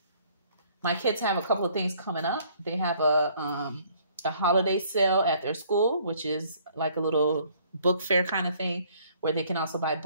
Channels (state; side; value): inverted; both; correlation -0.61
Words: kids have a couple of things coming up. They have a holiday sale at their school, which is like a little book fair kind of thing, where they can also buy